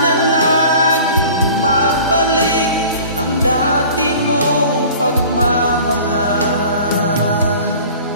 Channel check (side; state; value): both; inverted; correlation -0.44